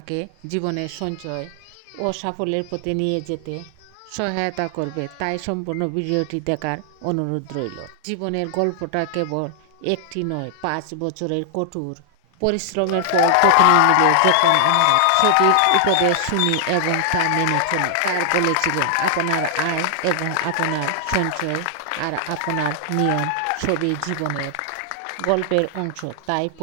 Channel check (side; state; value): both; different; correlation 0.00